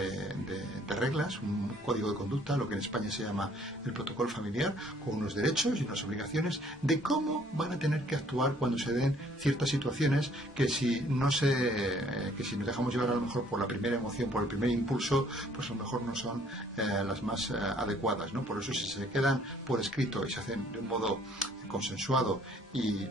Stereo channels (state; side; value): normal; both; correlation 0.61